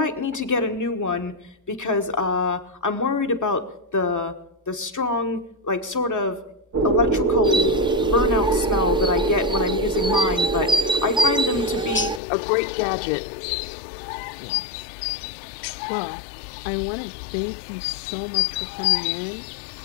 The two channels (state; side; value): drops out; right; at 12.2 s